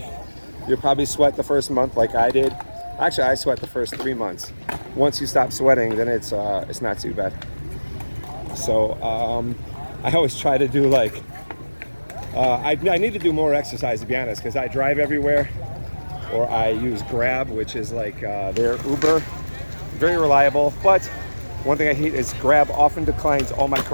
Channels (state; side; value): inverted; both; correlation -1.00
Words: you'll probably sweat the first month like I did. Actually, I sweat the first 3 months. Once you stop sweating, then it's not too bad. So I always try to do I need to do more exercise, to be honest, because I drive everywhere, or I use Grab, which is like their Uber. Very reliable, but one thing I hate is Grab often declines all my